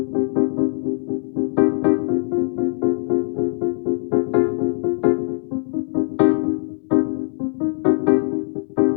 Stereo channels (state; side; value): silent; right; digital silence